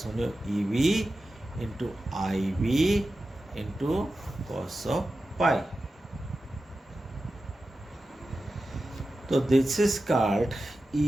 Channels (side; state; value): both; normal; correlation 0.93